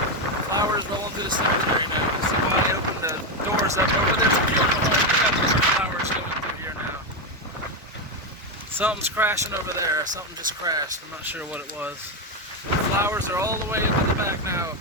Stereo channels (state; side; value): normal; both; correlation 0.09